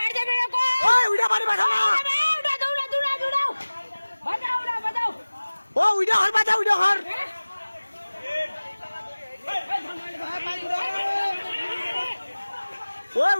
ওই উইডা বাড়ি বাঁচাও না, ও উইডা হর বাঁচা, উইডা হর ও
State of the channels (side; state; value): both; inverted; correlation -1.00